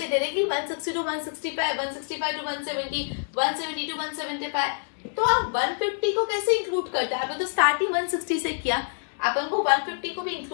डायरेक्टली 160 to 165, 165 to 170, 170 to 175, तो आप 150 को कैसे इंक्लूड करते हैं? आपने तो स्टार्टिंग 160 से किया, अपन को 150 को भी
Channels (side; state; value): right; silent; digital silence